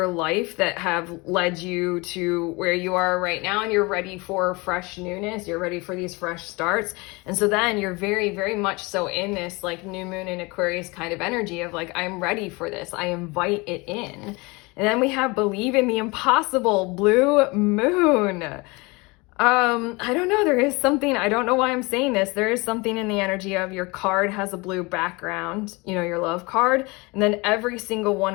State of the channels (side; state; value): right; quieter; 25.7 dB